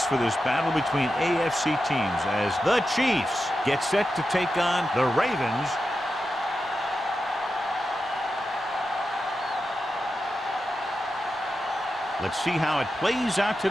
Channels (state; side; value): normal; both; correlation 0.90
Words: for this battle between AFC teams as the Chiefs get set to take on the Ravens. Let's see how it plays out